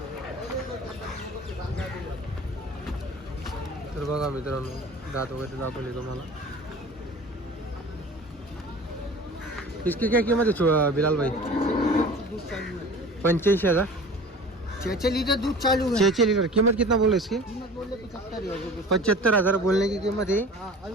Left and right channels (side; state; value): both; normal; correlation 0.41